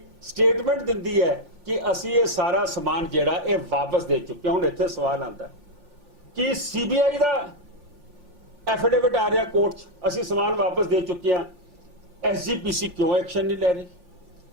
ਸਟੇਟਮੈਂਟ ਦਿੰਦੀ ਹੈ ਕਿ ਅਸੀਂ ਇਹ ਸਾਰਾ ਸਮਾਨ ਜਿਹੜਾ ਇਹ ਵਾਪਸ ਦੇ ਚੁੱਕੇ। ਹੁਣ ਇੱਥੇ ਸਵਾਲ ਆਉਂਦਾ ਕਿ CBI ਦਾ ਐਫੀਡੇਵਿਟ ਆ ਰਿਹਾ ਕੋਰਟ 'ਚ, ਅਸੀਂ ਸਮਾਨ ਵਾਪਸ ਦੇ ਚੁੱਕੇ ਹਾਂ, SGPC ਕਿਉਂ ਐਕਸ਼ਨ ਨਹੀਂ ਲੈ ਰਹੀ,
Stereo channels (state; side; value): late; left; 3.4 ms